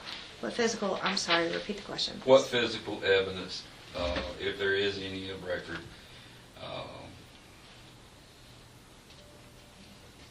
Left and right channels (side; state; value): both; identical; correlation 1.00